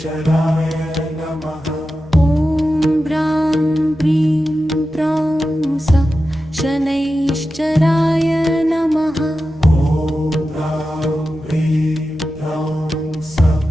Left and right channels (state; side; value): normal; both; correlation 0.92